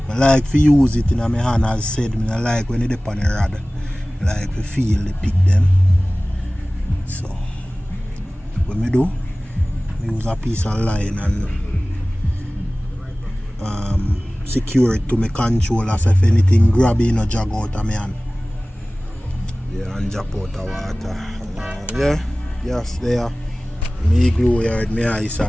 I like to use it in my hand, as said. I like when it's on the rod. I like to feel the pick them. So what I do, I use a piece of line and secure it to my controller, so if anything grab it, no jog out of my hand. Yeah, and drop out of water. Yeah, yes, there. Me glue here with my ice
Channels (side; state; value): both; normal; correlation 0.98